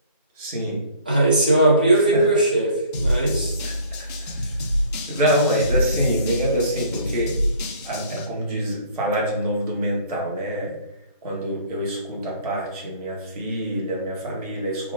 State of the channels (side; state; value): both; inverted; correlation -0.53